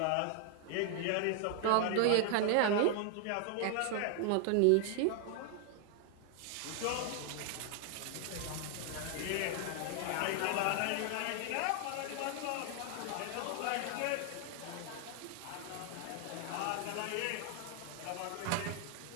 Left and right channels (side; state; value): both; different; correlation 0.00